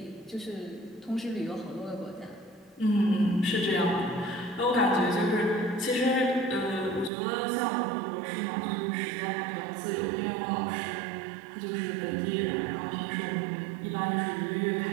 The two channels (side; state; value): left; drops out; at 7.1 s